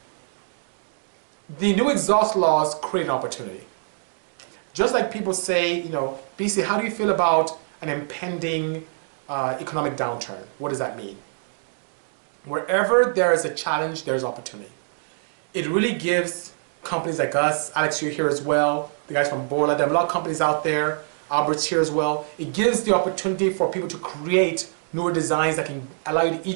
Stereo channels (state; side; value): silent; left; digital silence